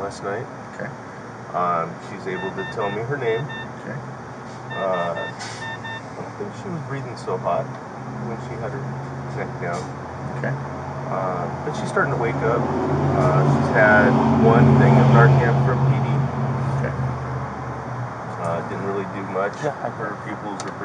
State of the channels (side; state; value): both; identical; correlation 1.00